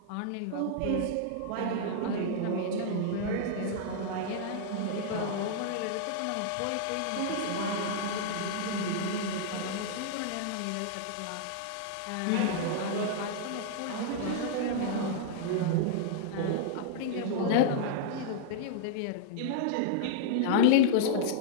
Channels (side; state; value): both; different; correlation -0.01